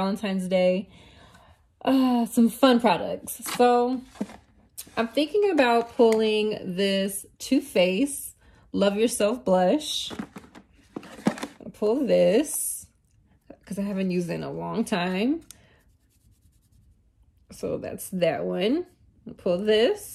Day. Some fun products. So I'm thinking about pulling this Too Faced Love Yourself blush. I'll pull this because I haven't used it in a long time. So that's that one. I'll pull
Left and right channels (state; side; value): identical; both; correlation 1.00